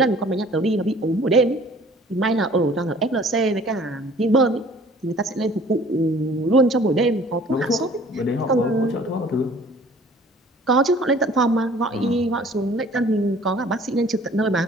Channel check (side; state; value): both; normal; correlation 0.52